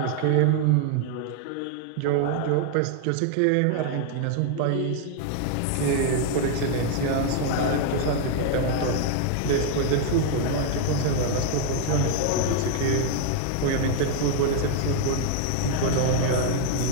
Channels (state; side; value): different; both; correlation 0.00